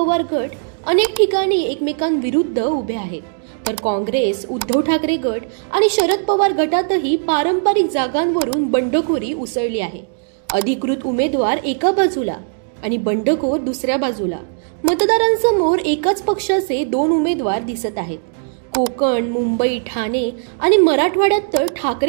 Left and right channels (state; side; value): silent; left; digital silence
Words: गट अनेक ठिकाणी एकमेकांविरुद्ध उभे आहेत, तर काँग्रेस, उद्धव ठाकरे गट आणि शरद पवार गटातही पारंपरिक जागांवरून बंडखोरी उसळली आहे. अधिकृत उमेदवार एका बाजूला आणि बंडखोर दुसऱ्या बाजूला. मतदारांसमोर एकाच पक्षाचे 2 उमेदवार दिसत आहेत. कोकण, मुंबई, ठाणे आणि मराठवाड्यात तर